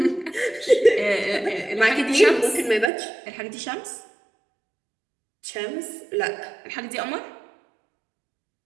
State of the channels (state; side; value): drops out; left; at 2.9 s